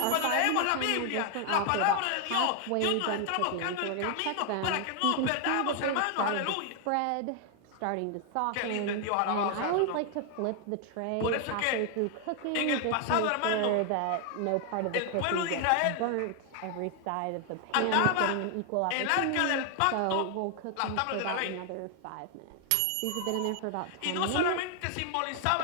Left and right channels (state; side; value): different; both; correlation 0.00